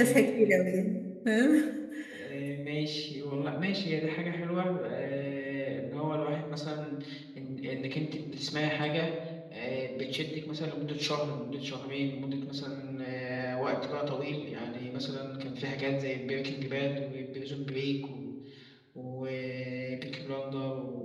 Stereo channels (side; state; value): both; identical; correlation 1.00